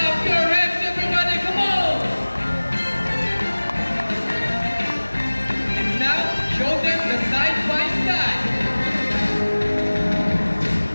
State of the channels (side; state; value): both; inverted; correlation -1.00